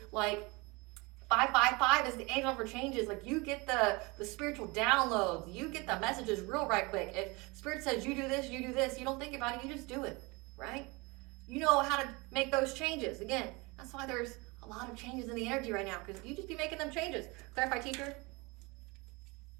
like, 555 is the angel for changes. Like, you get the spiritual downloads. You get the messages real right quick. If Spirit says you do this, you don't think about it, you just do it, right? You know how to make those changes. Again, that's why there's a lot of changes in the energy right now, because you just be making them changes. Clarify, teacher.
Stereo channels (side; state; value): left; quieter; 26.0 dB